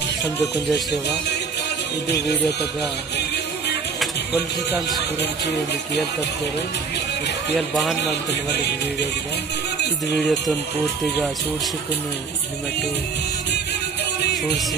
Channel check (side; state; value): left; quieter; 5.2 dB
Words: समझे कुंजा सेवा ಇದು ವಿಡಿಯೋ ತಗ ಪೊಲಿಟಿಕಲ್ಸ್ ಗುరించి ಒಂದು ಕೇಳ್ತಾರೆ ಕೇಳ್ ಬಾನ್ ಮಾಡ್ತೀನಿ ಒಂದು ವಿಡಿಯೋಗೆ ಇದು ವಿಡಿಯೋ ತನ್ ಪೂರ್ತಿగా చూడ్సుకుని నిమటు